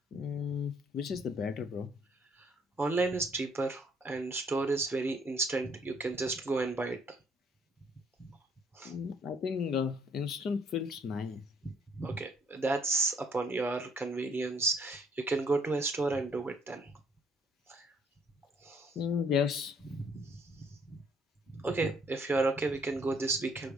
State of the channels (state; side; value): normal; both; correlation 0.64